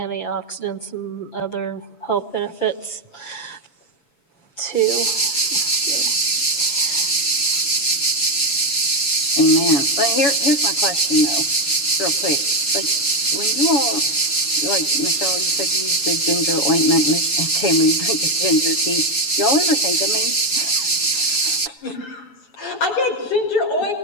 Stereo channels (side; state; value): right; late; 6.4 ms